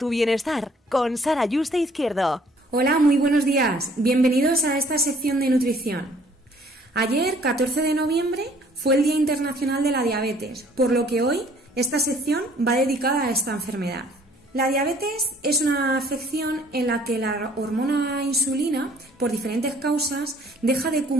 bienestar con Sara Yuste Izquierdo. Hola, muy buenos días. Bienvenidos a esta sección de nutrición. Ayer, 14 de noviembre, fue el Día Internacional de la Diabetes, por lo que hoy esta sección va dedicada a esta enfermedad. La diabetes es una afección en la que la hormona insulina, por diferentes causas, deja de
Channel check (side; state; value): both; normal; correlation 0.58